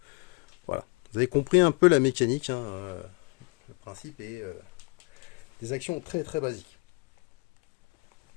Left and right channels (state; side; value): quieter; right; 30.0 dB